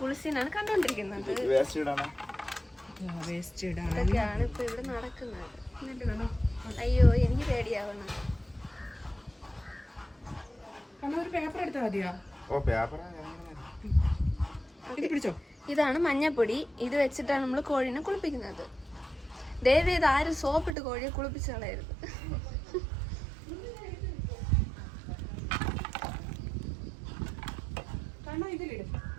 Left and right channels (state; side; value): drops out; left; at 20.8 s